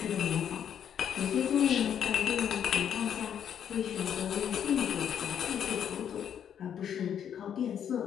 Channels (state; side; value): quieter; right; 9.0 dB